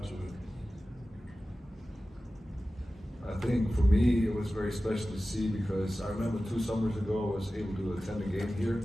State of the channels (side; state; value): both; normal; correlation 0.95